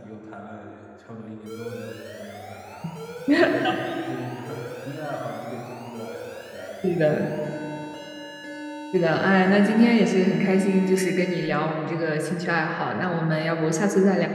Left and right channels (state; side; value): identical; both; correlation 1.00